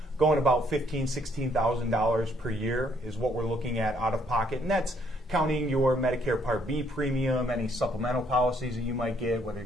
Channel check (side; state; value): both; normal; correlation 0.68